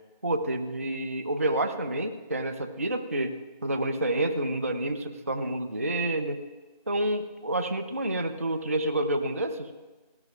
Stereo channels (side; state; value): both; inverted; correlation -0.63